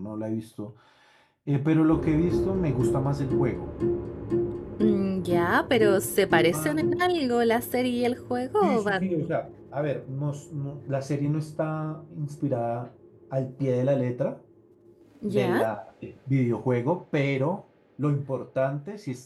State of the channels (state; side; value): identical; both; correlation 1.00